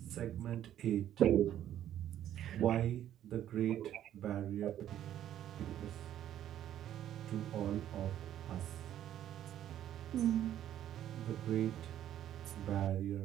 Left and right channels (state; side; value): quieter; left; 11.4 dB